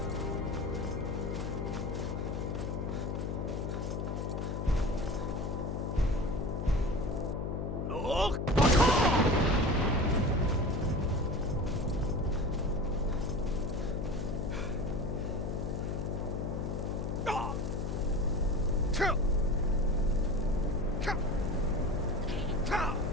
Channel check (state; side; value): noise; left; hum, 2 dB below the sound